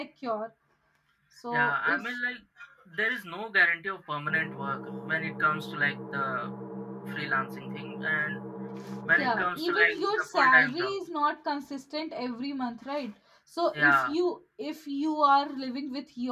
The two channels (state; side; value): identical; both; correlation 1.00